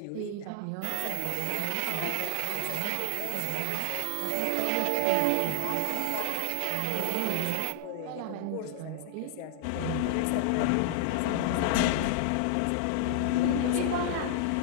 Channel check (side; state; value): both; different; correlation -0.01